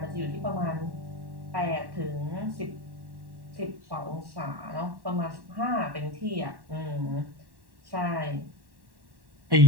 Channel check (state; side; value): late; left; 1.1 ms